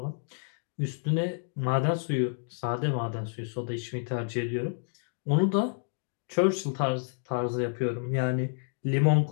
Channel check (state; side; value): silent; right; digital silence